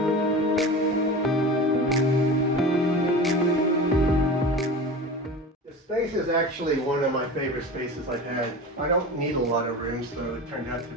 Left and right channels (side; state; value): both; normal; correlation 0.32